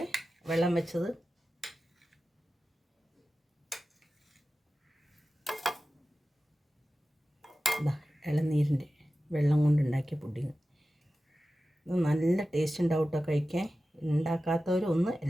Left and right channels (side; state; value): both; normal; correlation 0.94